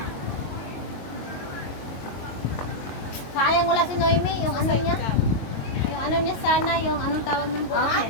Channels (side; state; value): right; late; 22 ms